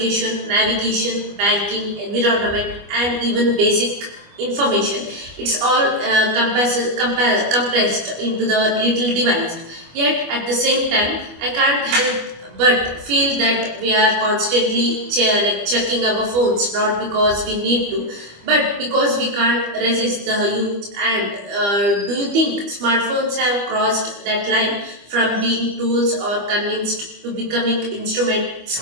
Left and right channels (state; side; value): late; left; 25 ms